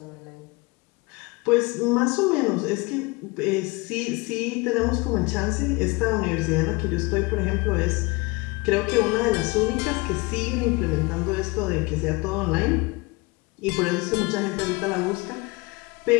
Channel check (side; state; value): right; quieter; 25.6 dB